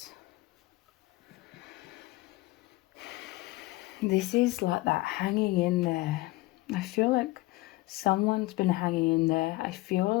This is like that hanging in there. I feel like someone's been hanging in there. I feel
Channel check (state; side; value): quieter; right; 20.1 dB